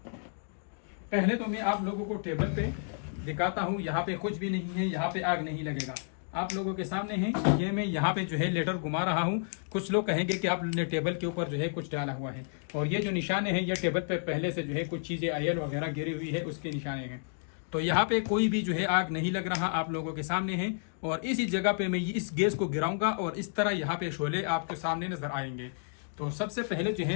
पहले तो मैं आप लोगों को टेबल पे दिखाता हूँ। यहाँ पे कुछ भी नहीं है, यहाँ पे आग नहीं लगेगा, आप लोगों के सामने है। ये मैं यहाँ पे जो है लेटर घुमा रहा हूँ। कुछ लोग कहेंगे कि आपने टेबल के ऊपर जो है कुछ डाला हुआ है, और ये जो निशाने हैं ये टेबल पे पहले से जो है कुछ चीजें ऑयल वगैरह गिरी हुई है, उसके निशाने हैं। तो यहाँ पे कोई भी जो है आग नहीं लग रहा, आप लोगों के सामने है। और इसी जगह पे मैं इस गैस को गिराऊंगा और इस तरह यहाँ पे शोले आपके सामने नजर आएंगे। तो सबसे पहले जो है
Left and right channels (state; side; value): silent; right; digital silence